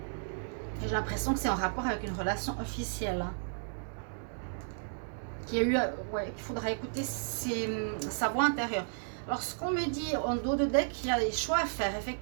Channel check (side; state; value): left; silent; digital silence